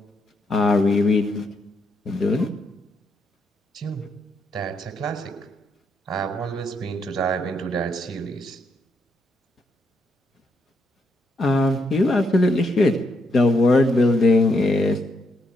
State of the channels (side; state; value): both; normal; correlation 0.77